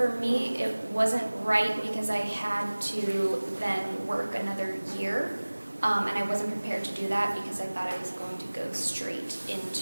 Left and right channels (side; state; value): both; inverted; correlation -1.00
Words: me, it wasn't right because I had to then work another year. and I wasn't prepared to do that because I thought I was going to go straight